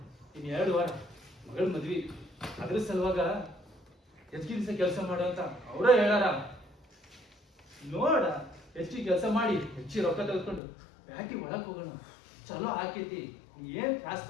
ಇನ್ 2 ವಾರ ಮಗಳ ಮದ್ವಿ. ಅದ್ರ ಸಲುವಾಗ ಹೆಚ್ಚಿಗೆ ದಿವಸ ಕೆಲಸ ಮಾಡೋ ಅಂತ ಅವರ ಹೇಳಾರ. ನೋಡ, ಹೆಚ್ಚಿಗೆ ಕೆಲಸ ಮಾಡಿ ಹೆಚ್ಚಿಗೆ ರೊಕ್ಕ ತೆಗೆದುಕೊಂಡು ಬ್ಯಾಟಿ ಒಳಗ್ ಹೋಗೋಣ. ಚಲೋ ಆಕೈತಿ, ನೀ ಏನ್ ತ್ರಾಸ್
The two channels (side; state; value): right; drops out; at 10.6 s